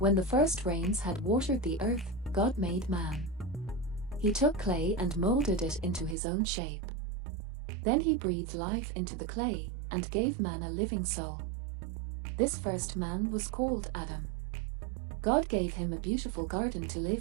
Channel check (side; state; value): left; drops out; at 6.2 s